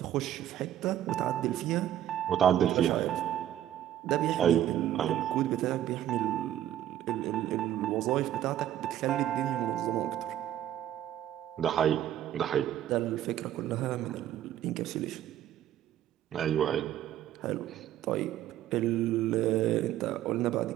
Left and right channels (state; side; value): quieter; left; 11.9 dB